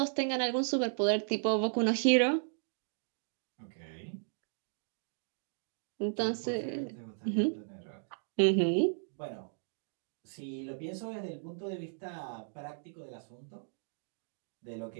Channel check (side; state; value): left; silent; digital silence